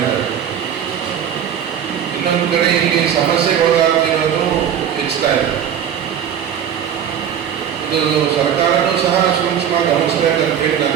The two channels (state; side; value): quieter; left; 9.0 dB